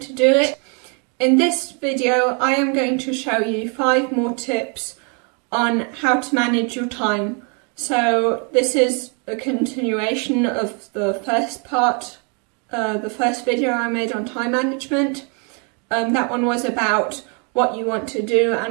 do it? In this video I am going to show you 5 more tips on how to manage your time. So this is a continuation of the first part, the first video I made on time management. That one was about what you want to do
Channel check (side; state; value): left; quieter; 36.4 dB